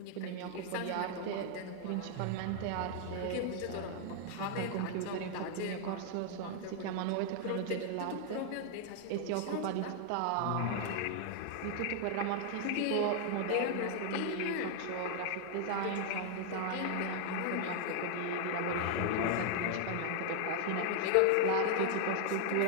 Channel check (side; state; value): both; different; correlation 0.00